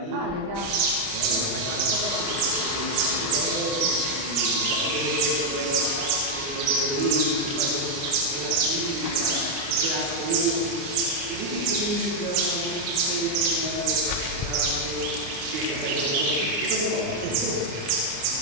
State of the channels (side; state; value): left; late; 29 ms